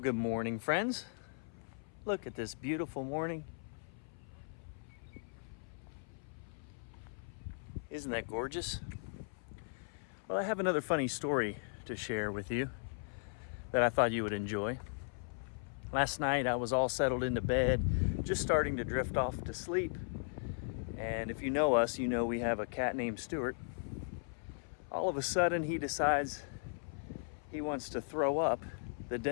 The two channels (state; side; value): silent; right; 53 dB below the other